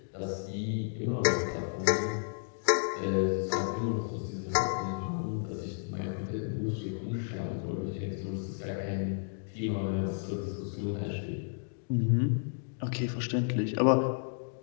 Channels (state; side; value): silent; right; digital silence